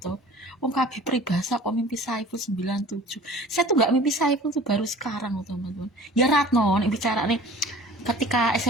tuh. Wong kabeh peribahasa kok mimpi Saiful 97. Saya tuh gak mimpi Saiful tuh baru sekarang teman-teman. Ya Ratno nih bicara nih ketika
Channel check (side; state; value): both; normal; correlation 0.46